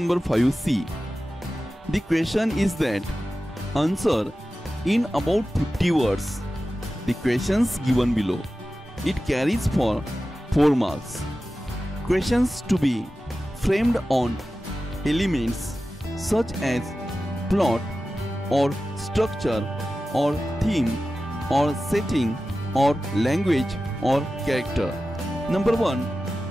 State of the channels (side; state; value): both; normal; correlation 0.94